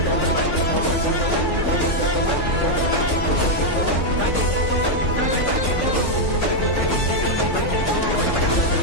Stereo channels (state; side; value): late; right; 3.5 ms